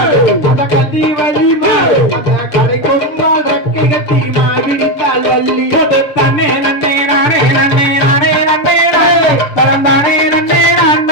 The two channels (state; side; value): late; right; 6.8 ms